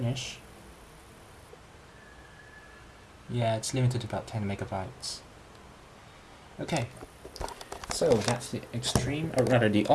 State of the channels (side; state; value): both; identical; correlation 1.00